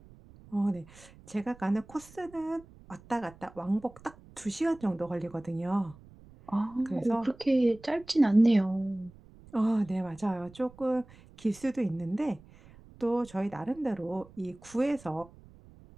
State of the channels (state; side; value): noise; right; rumble, 23 dB below the sound